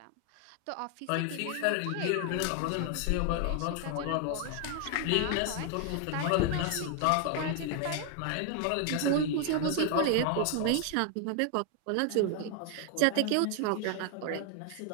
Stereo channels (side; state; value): both; different; correlation 0.00